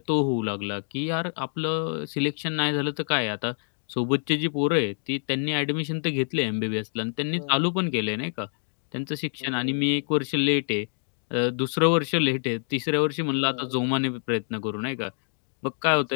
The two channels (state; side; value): silent; right; digital silence